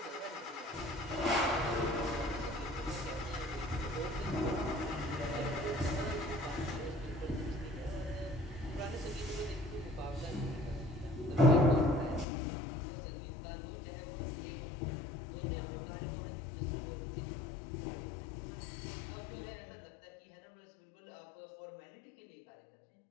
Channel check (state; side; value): drops out; right; at 12.2 s